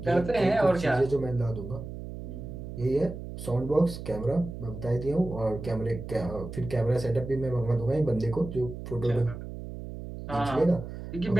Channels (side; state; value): right; noise; hum, 10 dB below the sound